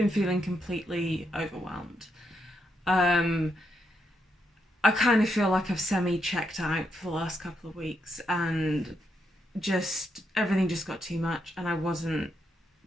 feeling completely overwhelmed. Um, I kind of feel like I've semi checked out for the last couple of weeks, and just everything just got too much, and I wasn't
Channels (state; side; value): normal; both; correlation 0.80